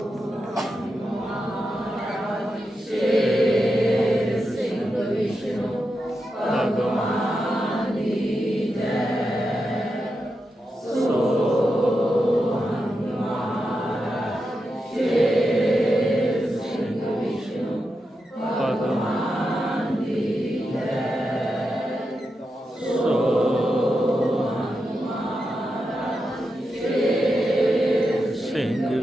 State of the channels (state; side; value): normal; both; correlation 0.87